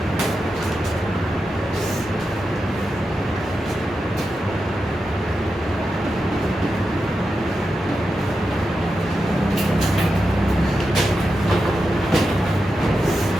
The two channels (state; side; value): normal; both; correlation 0.89